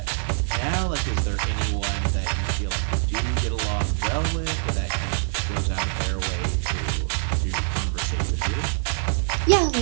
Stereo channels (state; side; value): silent; left; 62 dB below the other